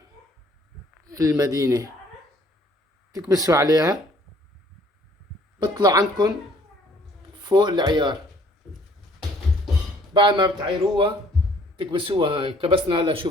المدينة، تكبسوا عليها، بطلع عندكم فوق العيار. بعد ما بتعيروها تكبسوها. هاي كبسنا. هلا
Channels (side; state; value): both; normal; correlation 0.59